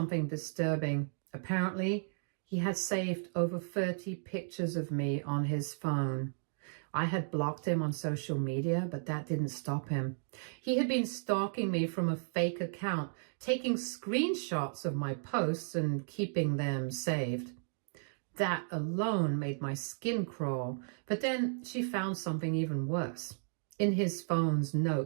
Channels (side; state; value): left; silent; digital silence